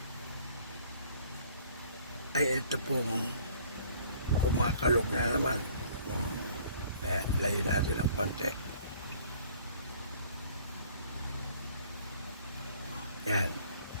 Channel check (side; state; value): both; inverted; correlation -0.55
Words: ay ito pong kumakalog na naman. Ayan, layo natin ang konti. Yan.